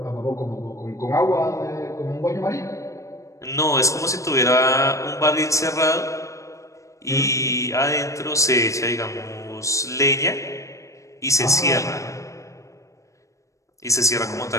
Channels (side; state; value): right; late; 0.15 ms